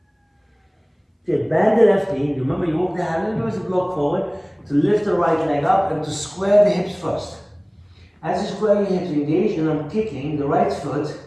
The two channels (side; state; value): both; identical; correlation 1.00